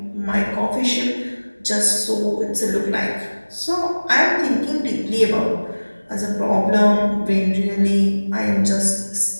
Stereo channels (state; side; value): inverted; both; correlation -1.00